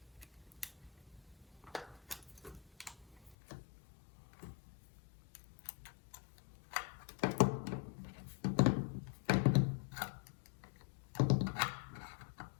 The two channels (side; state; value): right; drops out; at 3.4 s